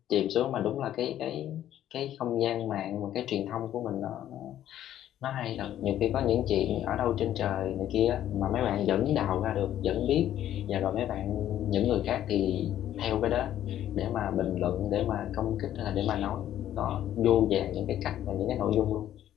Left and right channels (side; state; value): right; quieter; 11.8 dB